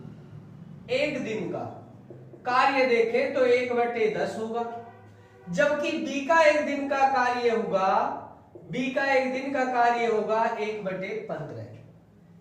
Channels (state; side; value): identical; both; correlation 1.00